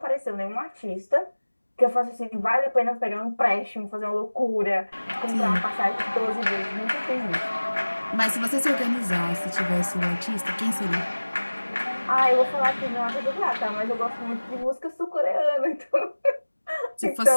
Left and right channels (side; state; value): both; inverted; correlation -1.00